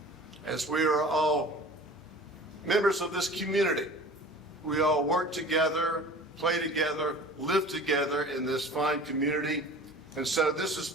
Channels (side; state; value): both; normal; correlation 0.42